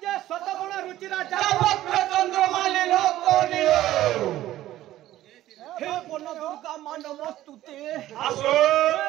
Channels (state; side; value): quieter; left; 14.3 dB